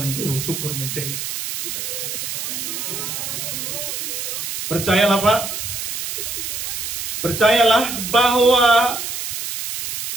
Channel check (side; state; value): right; noise; hiss, 4 dB below the sound